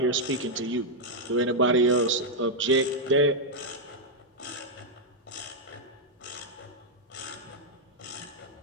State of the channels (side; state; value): both; normal; correlation -0.02